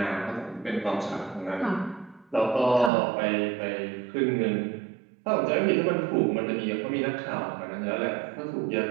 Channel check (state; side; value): drops out; left; at 2.9 s